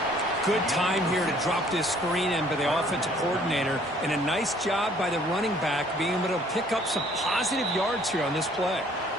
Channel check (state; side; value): normal; both; correlation 0.59